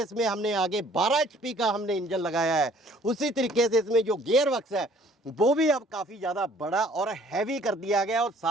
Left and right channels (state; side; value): normal; both; correlation 0.56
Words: इसमें हमने आगे 12 HP का हमने इंजन लगाया है, उसी तरीके से इसमें जो गियर बक्स है वो भी अब काफ़ी ज़्यादा बड़ा और हैवी कर दिया गया और